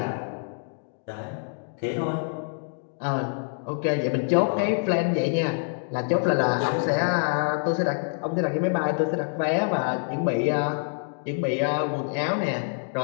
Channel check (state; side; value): silent; right; 58 dB below the other